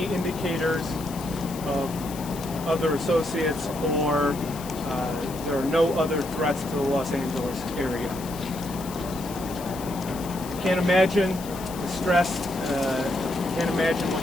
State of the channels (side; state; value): left; noise; hiss, 14 dB below the sound